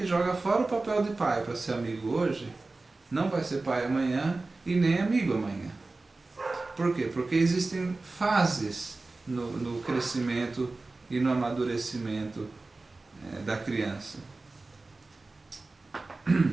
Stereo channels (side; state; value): left; quieter; 3.4 dB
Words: joga fora o papel de pai para ser amigo hoje, não vai ser pai amanhã e nem amigo amanhã. Por quê? Porque existem fases no crescimento e no amadurecimento da criança.